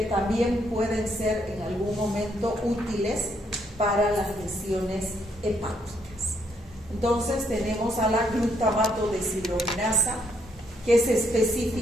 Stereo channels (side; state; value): both; normal; correlation 0.72